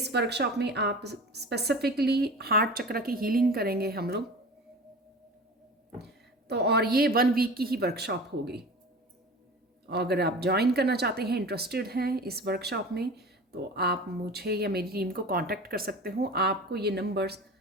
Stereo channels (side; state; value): both; normal; correlation 0.36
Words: वर्कशॉप में आप स्पेसिफिकली हार्ट चक्र की हीलिंग करेंगे हम लोग। तो और ये 1 वीक की ही वर्कशॉप होगी। अगर आप ज्वाइन करना चाहते हैं, इंटरेस्टेड हैं इस वर्कशॉप में, तो आप मुझे या मेरी टीम को कांटेक्ट कर सकते हो। आपको ये नंबर्स